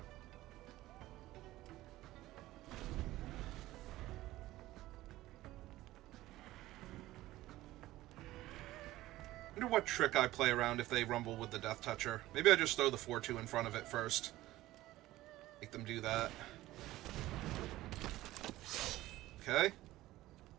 I wonder what trick I play around if they rumble with the Death Toucher. Maybe I just throw the 4-2 in front of it first. Make them do that. Okay.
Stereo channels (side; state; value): left; quieter; 16.5 dB